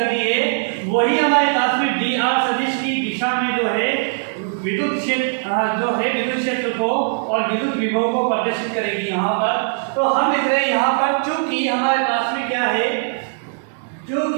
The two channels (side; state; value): left; silent; digital silence